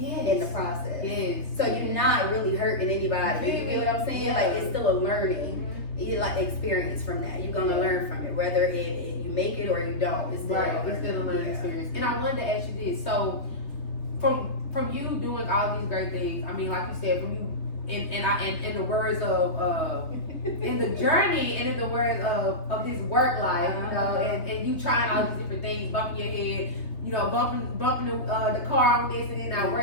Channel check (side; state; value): right; late; 3.4 ms